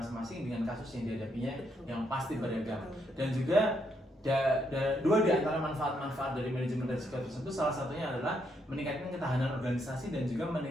dengan kasus yang dihadapinya yang pasti beragam. Dan juga dua di antara manfaat-manfaat dari manajemen risiko tersebut, salah satunya adalah meningkatkan ketahanan organisasi dan juga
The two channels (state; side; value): normal; both; correlation 0.76